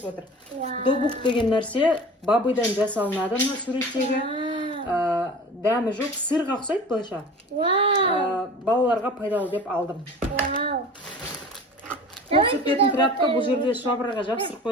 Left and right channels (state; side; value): normal; both; correlation 0.39